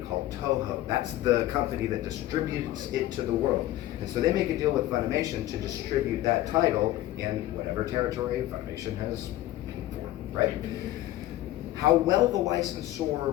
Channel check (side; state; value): right; quieter; 15.0 dB